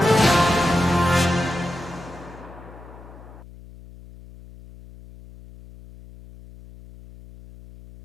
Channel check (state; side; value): noise; left; hum, 19 dB below the sound